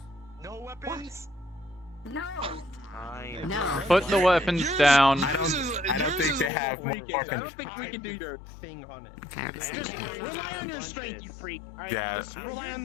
No weapons. No. Fine. Put the weapons down. I don't think they have more I fucking. don't think we can do your thing on it. Just rely on your strength, you freak. Alright, Yeah. just rely on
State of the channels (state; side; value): drops out; right; at 6.5 s